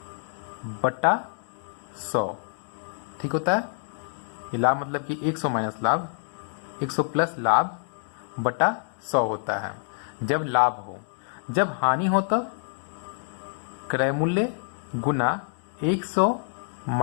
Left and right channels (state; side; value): silent; right; digital silence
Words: बटा 100, ठीक होता है। ये लाभ मतलब कि 100 माइनस लाभ, 100 प्लस लाभ बटा 100 होता है जब लाभ हो। जब हानि हो तो क्रय मूल्य गुना 100